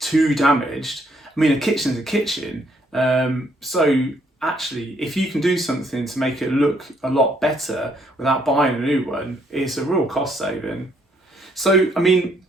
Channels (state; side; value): normal; both; correlation 0.70